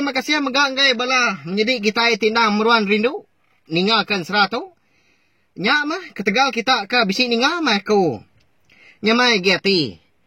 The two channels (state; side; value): identical; both; correlation 1.00